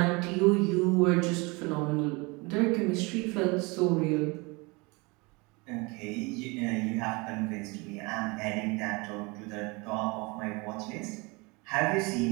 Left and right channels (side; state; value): left; quieter; 26.8 dB